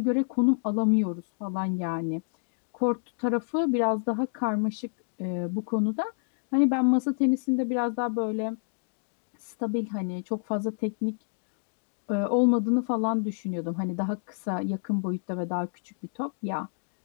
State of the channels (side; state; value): right; silent; digital silence